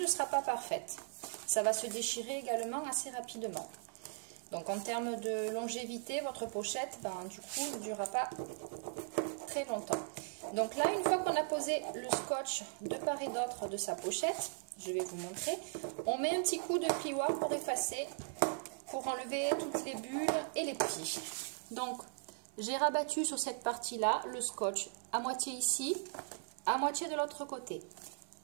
sera pas parfaite. Ça va se déchirer également assez rapidement. Donc en termes de longévité, votre pochette, du coup, ne durera pas très longtemps. Donc là, une fois qu'on a posé le scotch de part et d'autre de sa pochette, je vais vous montrer, on met un petit coup de plioir pour effacer, pour enlever toutes les bulles et les plis. Donc, j'ai rabattu sur cette partie-là le scotch à moitié ici, à moitié de l'autre côté.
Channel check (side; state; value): left; silent; 52 dB below the other